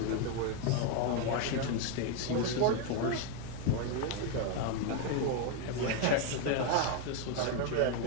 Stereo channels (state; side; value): different; both; correlation 0.01